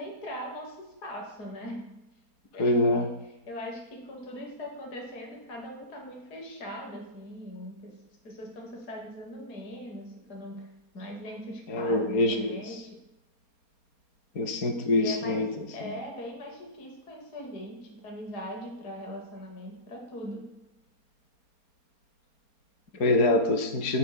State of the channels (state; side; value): late; right; 4.3 ms